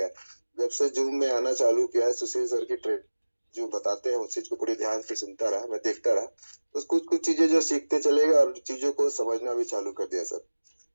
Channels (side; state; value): both; inverted; correlation -1.00